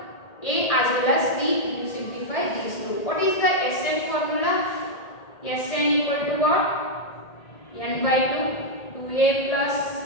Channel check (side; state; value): right; late; 1.8 ms